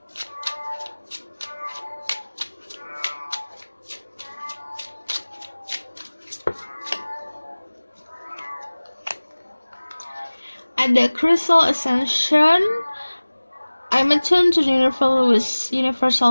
Ada Crystal Ascension. I'm attuned to the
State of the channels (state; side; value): inverted; both; correlation -1.00